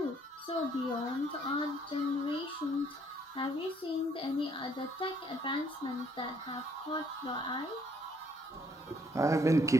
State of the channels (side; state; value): both; normal; correlation 0.66